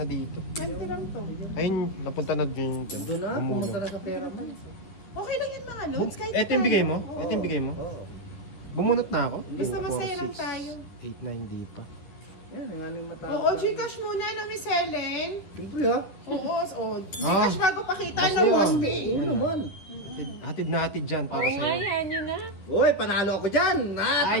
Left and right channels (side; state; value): right; late; 11 ms